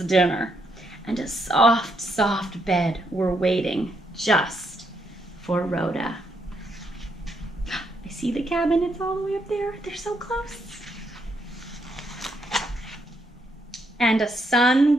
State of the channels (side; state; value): both; normal; correlation 0.77